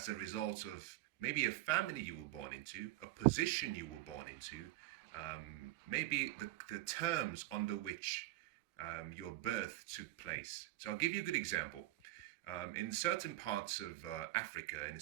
a result of maybe a family you were born into, a position you were born into, maybe the terms under which your birth took place. So I'll give you a good example. In certain parts of Africa, in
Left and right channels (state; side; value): quieter; left; 17.2 dB